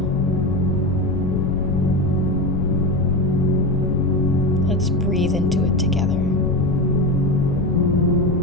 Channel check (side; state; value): left; noise; rumble, 4 dB below the sound